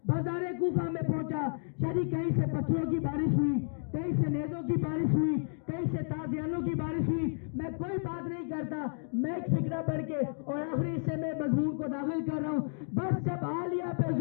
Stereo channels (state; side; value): silent; right; digital silence